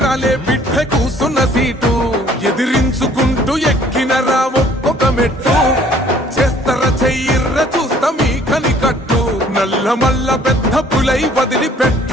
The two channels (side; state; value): both; normal; correlation 0.57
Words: రాలే బిడ్డ కూసున్న సీటు ఎదిరించుకుంటూ ఎక్కినరా ఒక్కొక్క మెట్టు చేస్తర చెయ్యిర్ర చూస్తా మీ కనికట్టు నల్ల మల్ల పెద్ద పులై వదిలి